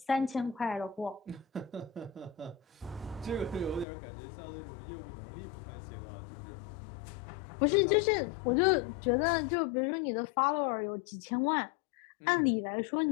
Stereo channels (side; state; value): right; drops out; at 3.9 s